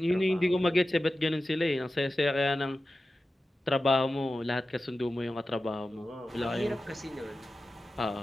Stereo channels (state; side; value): normal; both; correlation 0.94